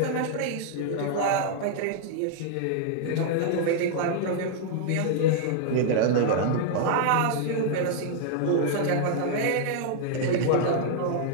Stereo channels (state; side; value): different; both; correlation -0.01